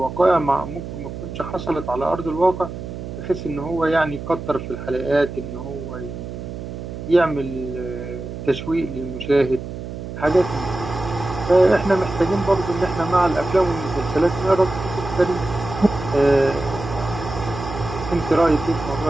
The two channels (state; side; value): noise; right; hum, 9 dB below the sound